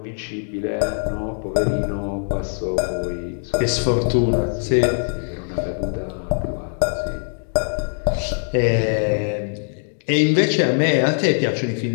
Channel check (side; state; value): right; silent; digital silence